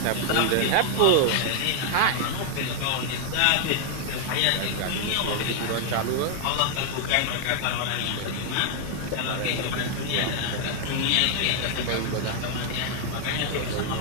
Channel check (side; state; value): both; different; correlation 0.00